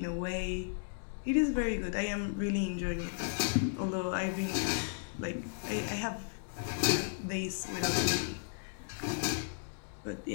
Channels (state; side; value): silent; right; digital silence